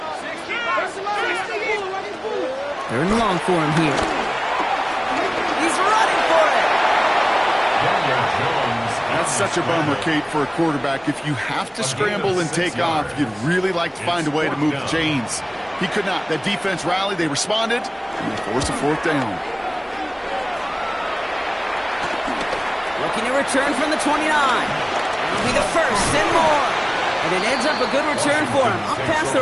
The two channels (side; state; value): both; identical; correlation 1.00